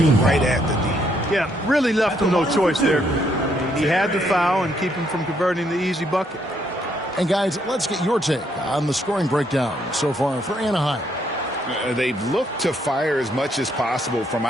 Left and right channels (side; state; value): both; normal; correlation 0.72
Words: right at the D. Yeah, really left him no choice there. He had the foul and keep him from converting the easy bucket. And guys, let's get your take on the scoring breakdown so far for Anaheim. They've looked to fire as much as possible from